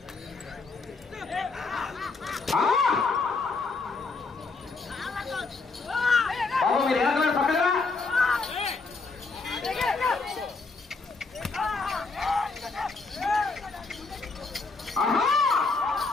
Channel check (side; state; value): right; quieter; 4.0 dB